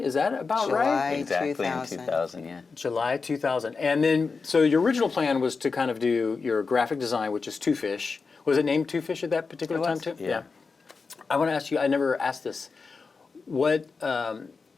that about right? Exactly 2000. In 2000, yeah. July 2000. And then, so your original plan was to kind of do your graphic design, which is Two Fish. Was it named Two Fish at that particular time too? Yeah. I want to ask you, I never asked this.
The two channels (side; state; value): right; quieter; 4.6 dB